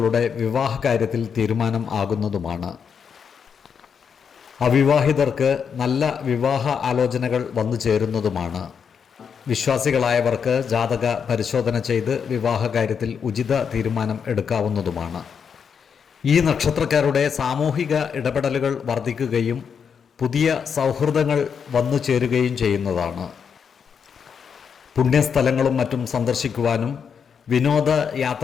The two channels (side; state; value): right; quieter; 6.8 dB